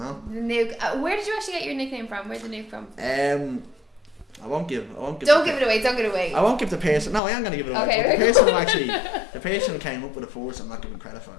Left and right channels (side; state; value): right; drops out; at 7.2 s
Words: The Nuke. Where did you actually get your nickname from? Where's the Nuke from? I won't give. Don't give it away. Don't give it away. I won't give the person. No, I am gonna give it away. Okay. The person who came up with the force, I'm not giving credit for